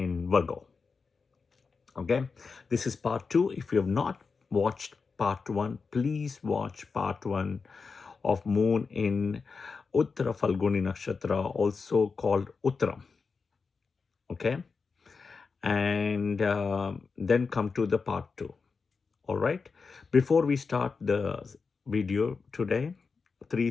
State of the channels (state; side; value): quieter; right; 4.9 dB